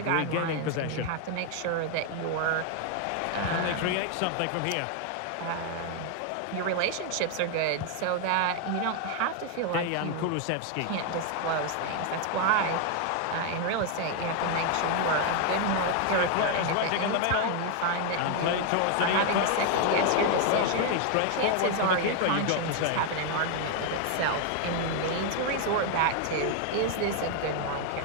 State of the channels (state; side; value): different; both; correlation 0.01